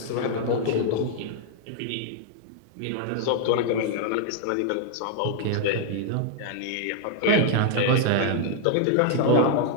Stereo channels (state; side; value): different; both; correlation 0.00